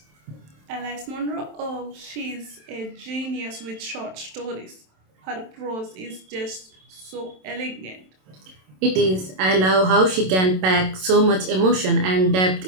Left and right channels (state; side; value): late; left; 27 ms